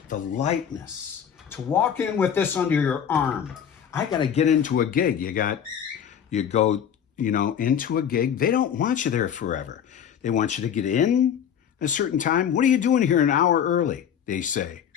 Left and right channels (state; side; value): quieter; right; 8.5 dB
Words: The lightness. To walk in with this under your arm. I got to get into a gig. You go, into a gig. They don't want you there forever. They want you to get in a certain time. What are you doing here an hour early? They say.